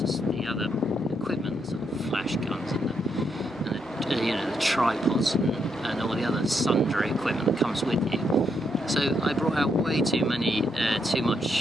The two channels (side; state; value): left; noise; hum, 28 dB below the sound